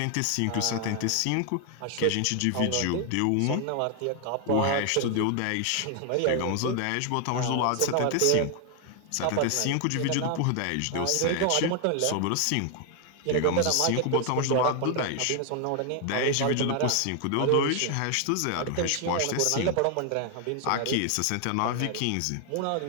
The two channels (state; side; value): different; both; correlation 0.00